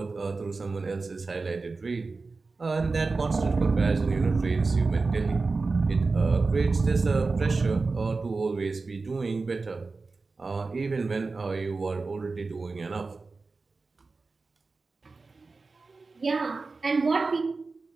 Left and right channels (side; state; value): left; quieter; 3.9 dB